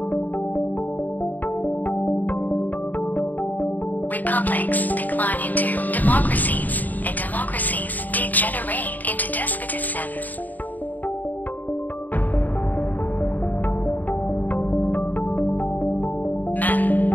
Republics decline into democracies, and democracies degenerate into despotisms. Men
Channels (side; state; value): right; late; 0.083 ms